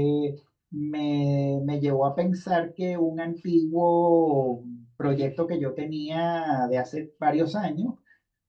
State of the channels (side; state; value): both; identical; correlation 1.00